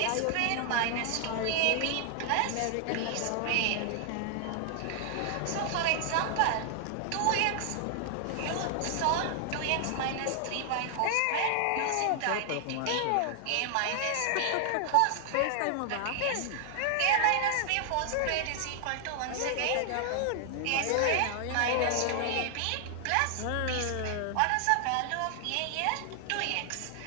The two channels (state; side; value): different; both; correlation 0.00